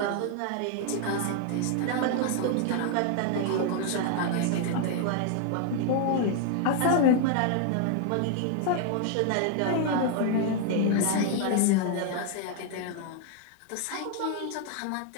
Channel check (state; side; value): different; both; correlation 0.00